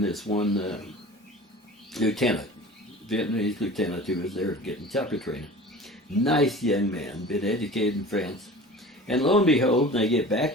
this one lieutenant, Vietnamese lieutenant who was there getting chopper training. Nice young man, been educated in France. And lo and behold, when I get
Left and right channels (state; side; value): normal; both; correlation 0.39